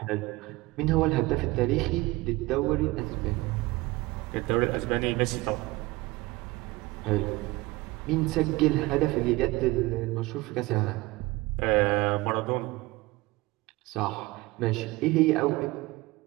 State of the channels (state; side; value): quieter; left; 21.3 dB